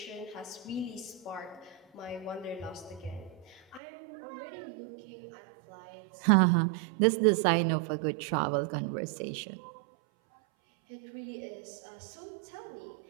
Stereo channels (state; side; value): drops out; left; at 3.8 s